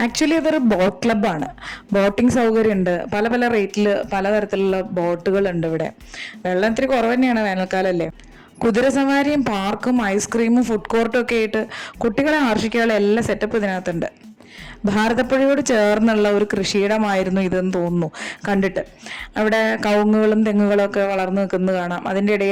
ആക്ച്വലി അതൊരു ബോട്ട് ക്ലബ്ബാണ്. ബോട്ടിംഗ് സൗകര്യമുണ്ട്, പല പല റേറ്റിൽ പലതരത്തിലുള്ള ബോട്ടുകളുണ്ട് ഇവിടെ. വെള്ളം ഇത്തിരി കുറവ് തന്നെയാണ്, വേനൽക്കാലല്ലേ. കുതിരസവാരിയും പാർക്കും ഐസ്ക്രീമും ഫുഡ് കോർട്ടും ഒക്കെ ആയിട്ട് കുട്ടികളെ ആകർഷിക്കാനുള്ള എല്ലാ സെറ്റപ്പ് ഇതിനകത്തുണ്ട്. ഭാരതപ്പുഴയോട് ചേർന്നുള്ള ഒരു കൃഷിയിടമായിരുന്നു ഇതെന്ന് തോന്നുന്നു കണ്ടിട്ട്. അവിടെ കവുങ്ങുകളും തെങ്ങുകളും ഒക്കെ വളർന്നു നിൽക്കുന്നത് കാണാം. അതിൻ്റെ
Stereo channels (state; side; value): identical; both; correlation 1.00